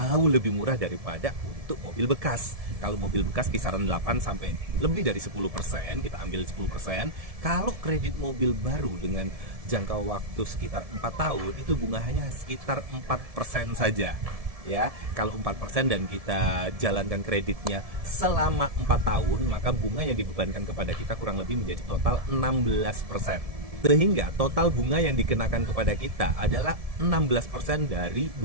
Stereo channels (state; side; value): late; left; 1.7 ms